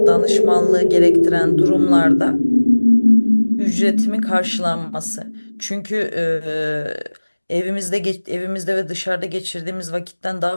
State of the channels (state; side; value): inverted; both; correlation -1.00